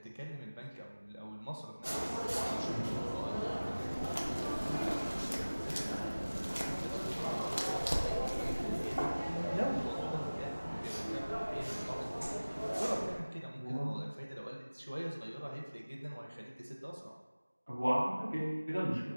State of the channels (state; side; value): inverted; both; correlation -1.00